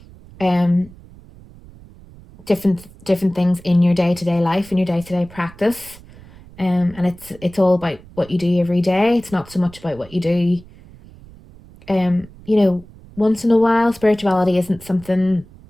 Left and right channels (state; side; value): noise; right; rumble, 22 dB below the sound